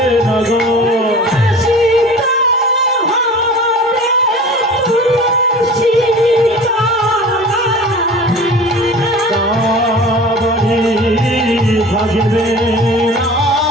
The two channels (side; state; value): both; normal; correlation 0.40